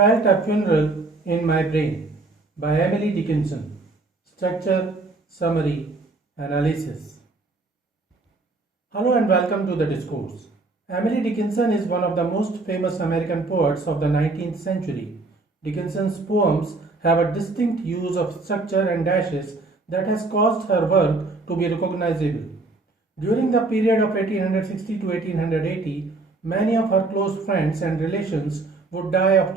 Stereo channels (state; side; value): quieter; left; 3.4 dB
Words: a funeral in my brain by Emily Dickinson. Structure, summary, analysis. Hello and welcome to the Discourse. Emily Dickinson is one of the most famous American poets of the 19th century. Dickinson's poems have a distinct use of structure and dashes that has caused her work to be recognizable. During the period of 1860 to 1880, many of her close friends and relations would die of